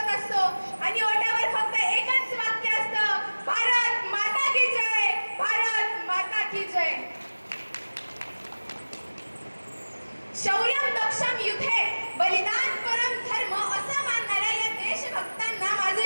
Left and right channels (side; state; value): both; inverted; correlation -1.00